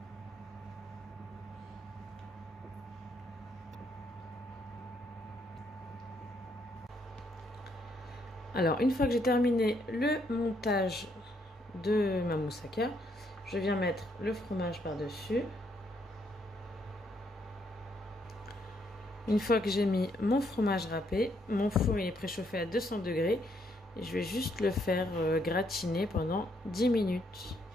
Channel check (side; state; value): both; normal; correlation 0.73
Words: Alors, une fois que j'ai terminé le montage de ma moussaka, je viens mettre le fromage par-dessus. Une fois que j'ai mis mon fromage râpé, mon four il est préchauffé à 200 degrés et je vais juste le faire gratiner pendant 10 minutes.